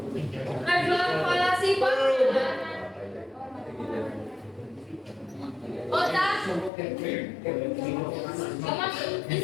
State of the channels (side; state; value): right; drops out; at 6.7 s